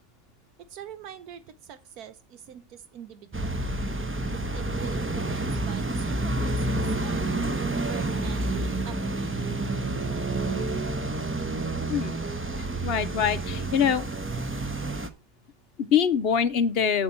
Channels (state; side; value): normal; both; correlation 0.43